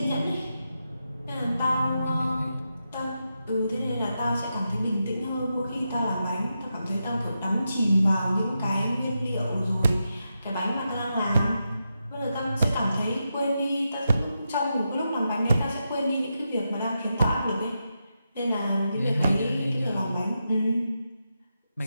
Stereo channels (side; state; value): both; inverted; correlation -0.87